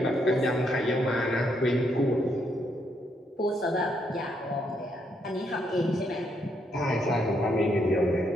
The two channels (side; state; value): both; normal; correlation 0.76